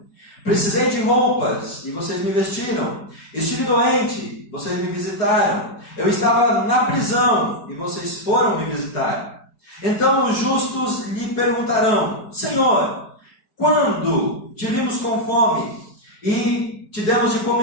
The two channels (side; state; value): right; late; 4.8 ms